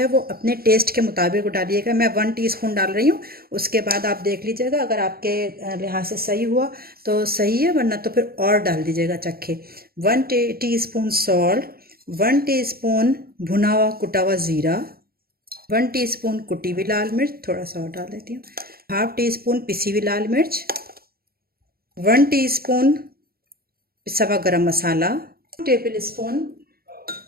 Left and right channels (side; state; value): left; late; 0.44 ms